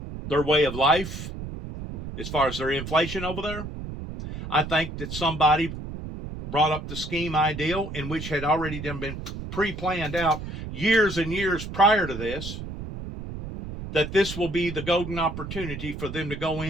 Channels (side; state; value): right; noise; rumble, 8 dB below the sound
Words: way of life as far as their inflation over there, I think that somebody brought up the scheme ideal, in which had already been pre-planned out years and years prior to this, that this will be the golden opportunity for them to go